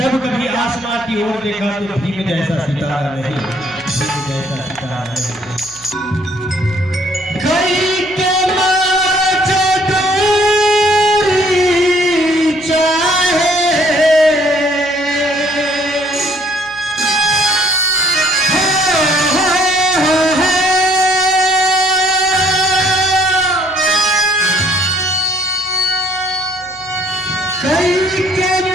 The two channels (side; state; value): left; noise; hum, 26 dB below the sound